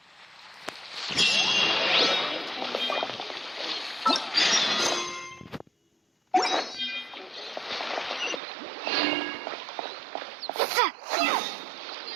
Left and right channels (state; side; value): drops out; left; at 8.4 s